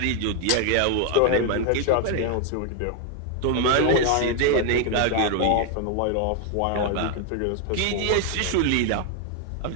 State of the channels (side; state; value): both; different; correlation 0.01